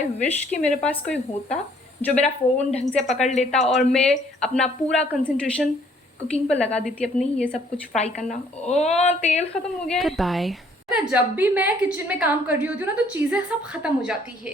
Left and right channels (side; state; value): both; normal; correlation 0.62